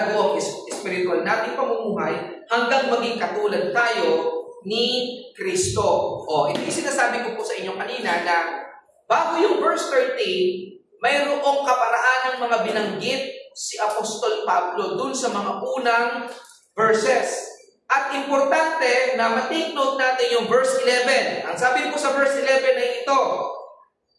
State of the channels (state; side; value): identical; both; correlation 1.00